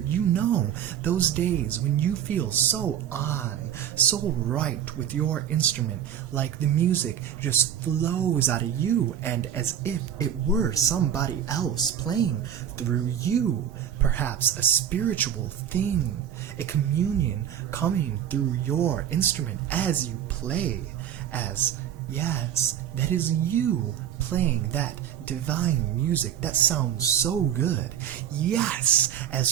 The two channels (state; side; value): quieter; left; 9.7 dB